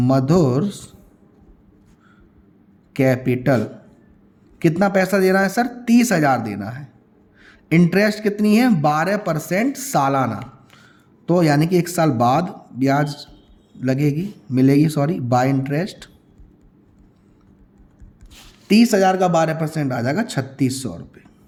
capital. कितना पैसा देना है सर? 30,000 देना है। इंटरेस्ट कितनी है? 12% सालाना, तो यानी कि 1 साल बाद ब्याज लगेगी, मिलेगी, सॉरी, बाय इंटरेस्ट। 30,000 का 12% आ जाएगा 3,600 रुपये।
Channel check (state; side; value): identical; both; correlation 1.00